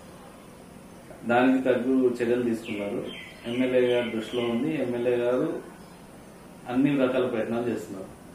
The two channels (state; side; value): identical; both; correlation 1.00